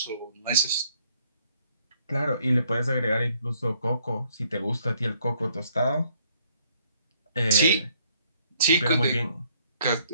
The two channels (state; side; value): inverted; both; correlation -0.67